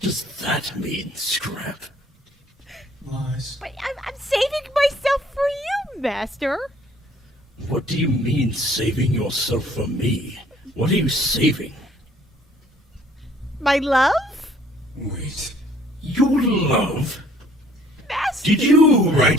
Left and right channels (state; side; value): normal; both; correlation 0.59